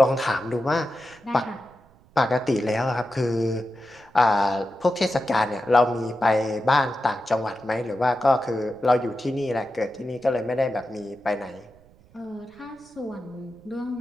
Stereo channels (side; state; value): right; noise; rumble, 28 dB below the sound